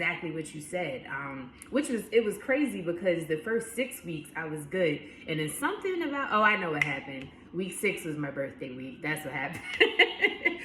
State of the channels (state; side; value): identical; both; correlation 1.00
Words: what you said, it was crazy because the first 6 weeks I was good. And then something about, I know what happened. Week 6 was my birthday week. That's what happened.